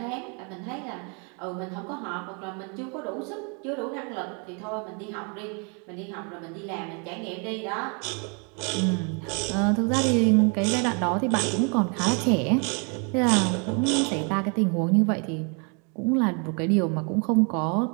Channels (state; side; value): quieter; left; 35.8 dB